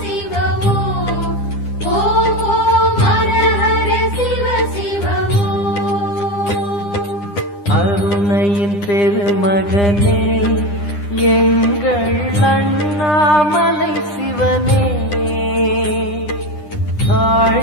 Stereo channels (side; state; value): right; late; 9.9 ms